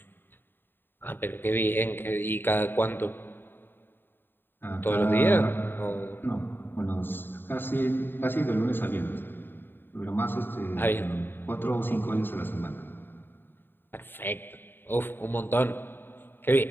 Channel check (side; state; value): right; late; 0.097 ms